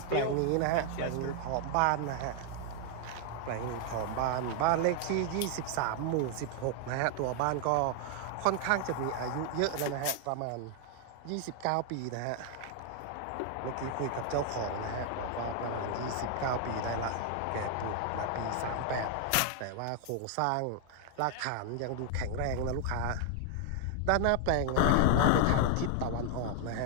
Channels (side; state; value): both; different; correlation 0.00